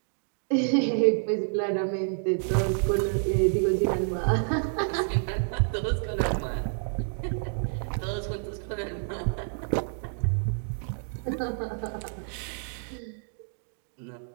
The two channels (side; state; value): left; silent; digital silence